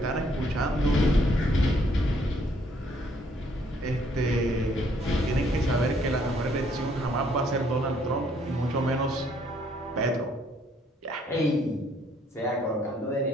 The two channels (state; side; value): normal; both; correlation 0.66